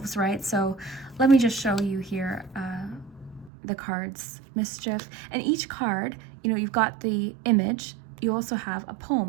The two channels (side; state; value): left; drops out; at 3.5 s